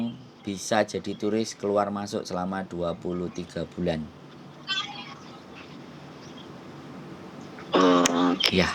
bisa jadi turis keluar masuk selama 23 bulan. Ya,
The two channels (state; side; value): identical; both; correlation 1.00